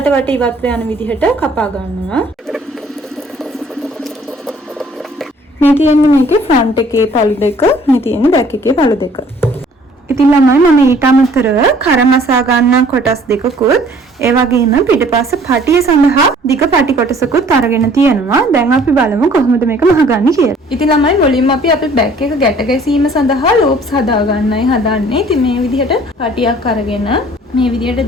වට ඉවත් යන විදිහට කපා ගන්නවා. මේ තියෙන්නේ මේකේ ෆ්‍රන්ට් එකේ පළු දෙක, මේ තියෙන්නේ බෑක් එකේ පළු දෙක. ඉතින් ළමයි මම ඊට අමතරව කරමසා ගන්න කොටස් දෙකකුත් ඒ වගේම පිටපස්ස පටිය සඳහා දිග පටි කොටසකුත් අරගෙන තියෙනවා. දැන් අපි බලමු කොහොමද මේක මහගන්නේ කියලා. ඉතින් ළමයි මුලින්ම අපි අපේ බෑක් එක ගැට ගැසීම සඳහා ලූප්ස් හදා ගන්නයි හදන්නේ. ඉතින් මේ විදිහට පටියක් අරගෙන මේ විදිහට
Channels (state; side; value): normal; both; correlation 0.56